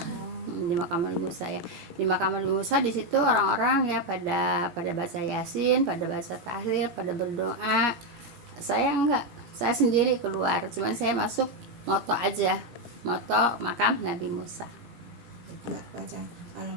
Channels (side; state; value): left; late; 18 ms